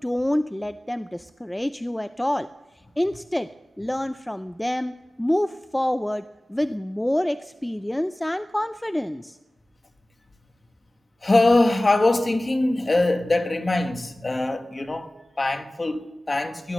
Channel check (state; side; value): normal; both; correlation 0.98